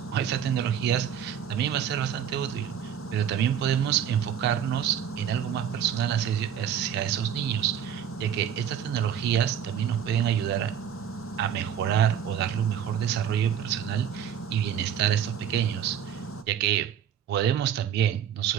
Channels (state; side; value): quieter; left; 8.9 dB